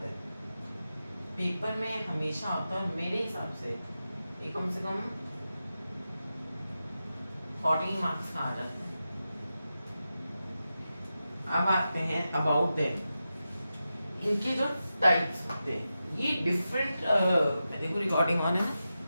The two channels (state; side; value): inverted; both; correlation -0.91